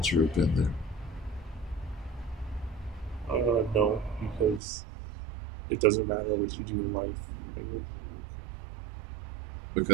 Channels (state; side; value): drops out; left; at 4.6 s